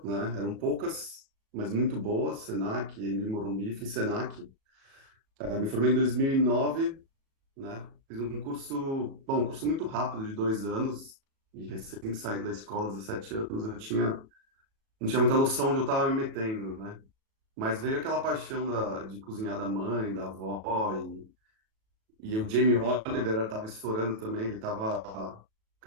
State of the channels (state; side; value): late; left; 37 ms